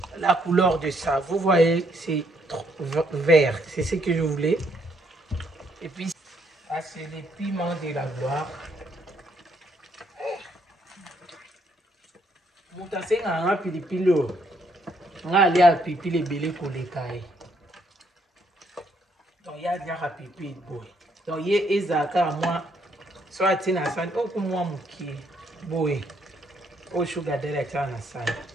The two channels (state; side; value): normal; both; correlation 0.71